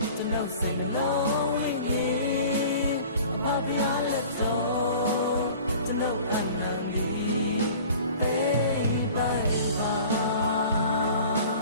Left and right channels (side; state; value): both; inverted; correlation -0.45